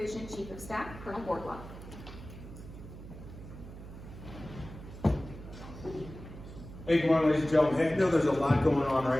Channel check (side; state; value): right; noise; hum, 14 dB below the sound